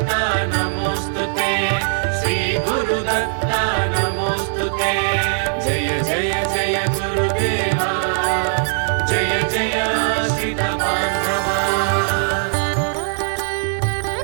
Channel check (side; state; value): left; silent; digital silence